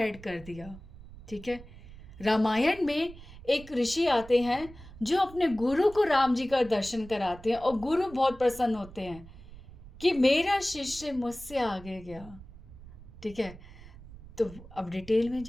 कर दिया, ठीक है। रामायण में एक ऋषि आते हैं जो अपने गुरु को राम जी का दर्शन कराते हैं और गुरु बहुत प्रसन्न होते हैं कि मेरा शिष्य मुझसे आगे गया, ठीक है। तो अब डिटेल में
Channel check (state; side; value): noise; right; rumble, 17 dB below the sound